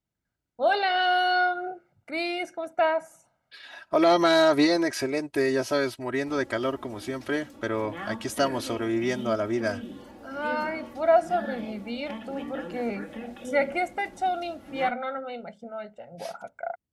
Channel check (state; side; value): identical; both; correlation 1.00